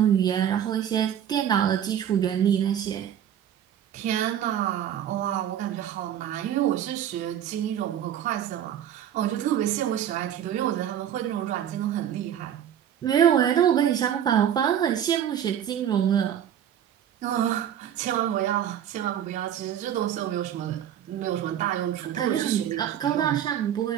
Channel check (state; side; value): quieter; left; 10.0 dB